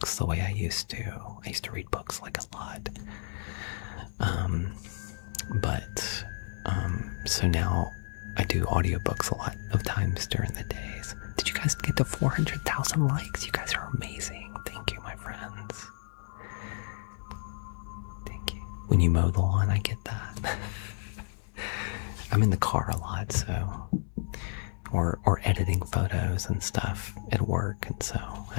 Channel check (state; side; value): silent; right; digital silence